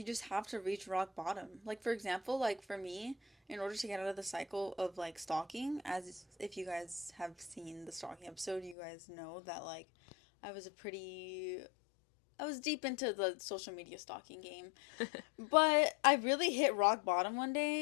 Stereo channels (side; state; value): right; drops out; at 8.8 s